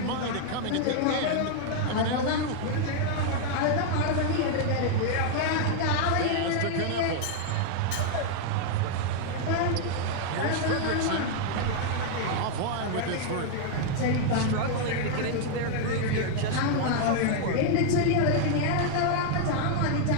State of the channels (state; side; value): different; both; correlation 0.00